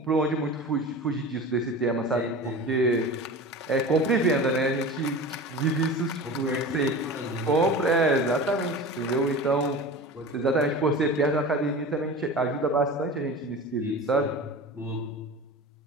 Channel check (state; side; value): normal; both; correlation 0.33